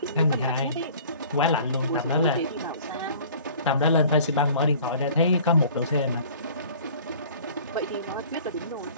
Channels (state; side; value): inverted; both; correlation -0.49